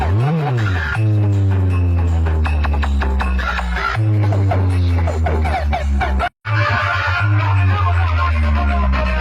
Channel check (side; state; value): both; identical; correlation 1.00